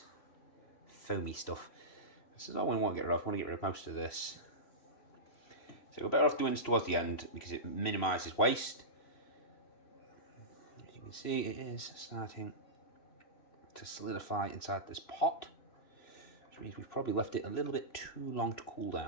foamy stuff. This is all we want to get rid of. We want to get rid of most of this. So we're better off doing this towards the end because it minimises waste. As you can see, it is starting to solidify inside this pot, which means we've probably left it a little bit too long to cool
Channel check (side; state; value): right; late; 3.0 ms